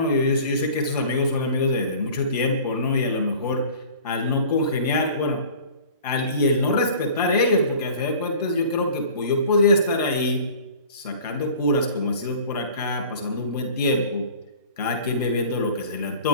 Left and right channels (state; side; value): inverted; both; correlation -0.45